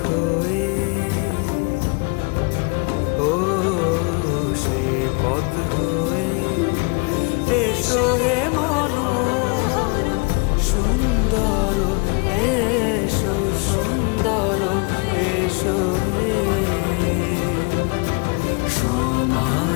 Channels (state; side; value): quieter; right; 32.7 dB